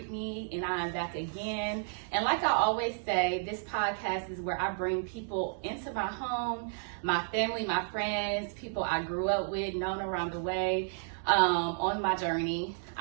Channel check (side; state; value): left; silent; digital silence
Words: and I am back again. And like I always say, this podcast is where I bring people into my home, my family, my friends, people I grew up with, known around the way, on my journey.